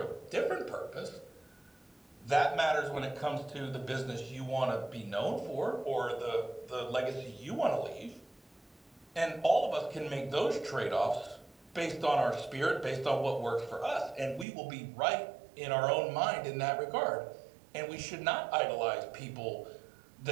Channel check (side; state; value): left; drops out; at 14.5 s